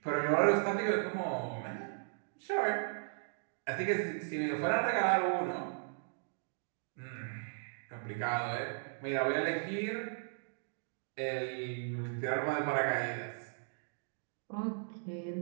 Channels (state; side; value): silent; left; digital silence